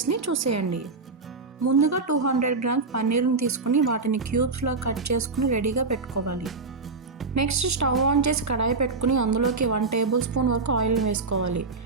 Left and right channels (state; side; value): quieter; left; 4.0 dB